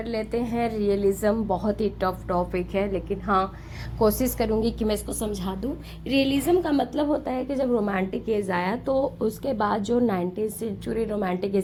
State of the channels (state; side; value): identical; both; correlation 1.00